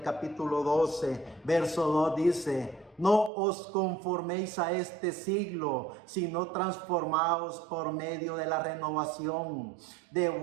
capítulo 12, verso 2 dice: no os conforméis a este siglo, sino transformaos por medio de la renovación de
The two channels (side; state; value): left; drops out; at 3.3 s